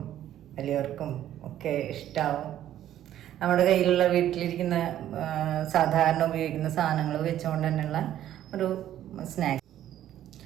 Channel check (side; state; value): left; quieter; 11.9 dB